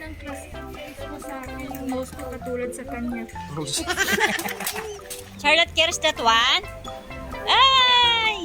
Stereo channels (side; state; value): both; identical; correlation 1.00